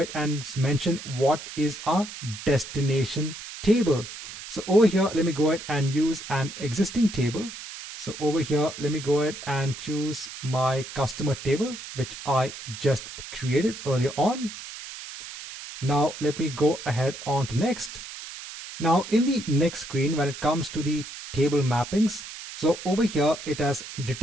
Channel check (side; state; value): right; noise; hiss, 12 dB below the sound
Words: and mention what is our destination table. So over here, let me go ahead and use an existing table. So over here, let me go ahead and choose my customer table, which I just created earlier on. Now let me go ahead on to next. Now in the next screen, when it comes to the table mappings, so over here, it has